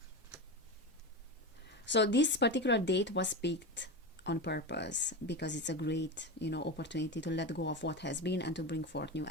So this particular date was picked on purpose because it's a great, opportunity to let go of what has been and to bring forth new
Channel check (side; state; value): both; normal; correlation 0.21